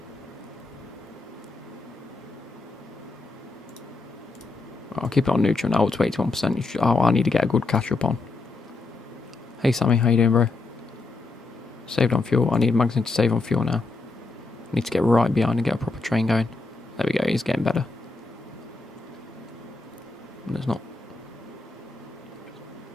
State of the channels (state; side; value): quieter; right; 3.5 dB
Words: I'll keep it on neutral now, up to 81%. Oh, I need to get a good catch up on. Hey Sammy, how you doing, bro? Saved on fuel. I need Magnussen to save on fuel now. Need to get right behind and get a proper train going. There we go, he's getting better. There's not.